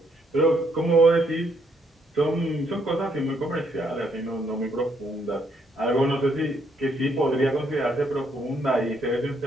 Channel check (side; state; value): both; normal; correlation 0.72